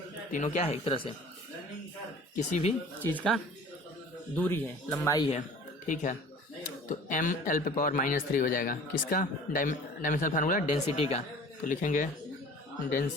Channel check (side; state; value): both; normal; correlation 0.45